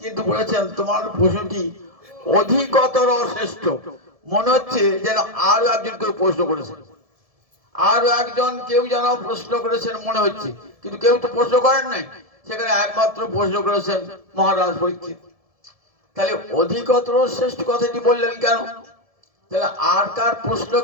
বলেছেন তোমার প্রশ্নটি অধিকতর শ্রেষ্ঠ, মনে হচ্ছে যেন আরো একজন কেউ প্রশ্ন করেছেন, আরো একজন কেউ যেন প্রশ্ন করেছেন মনে হচ্ছে, কিন্তু কেউ তো প্রশ্ন করেন নাই, সেখানে একমাত্র প্রশ্ন করেছেন মহারাজ পরীক্ষিত। তাহলে অধিকতর শ্রেষ্ঠ কথাটি বললেন কেন? তাহলে আর কার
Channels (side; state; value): left; late; 1.7 ms